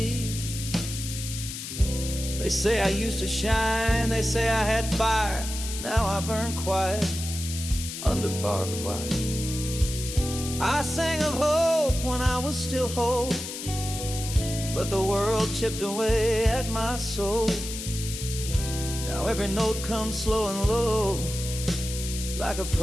They say I used to shine, they say I had fire. Now I burn quiet under barbed wire. I sang of hope when I was still whole, but the world chipped away at my soul. Now every note comes slow and low, like a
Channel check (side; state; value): left; noise; hiss, 8 dB below the sound